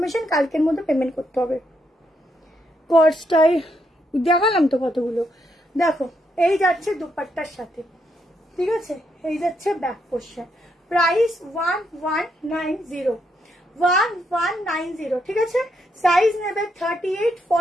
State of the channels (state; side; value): normal; both; correlation 0.78